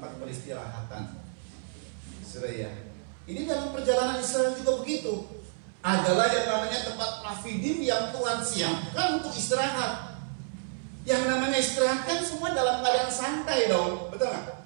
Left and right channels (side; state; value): left; silent; 58 dB below the other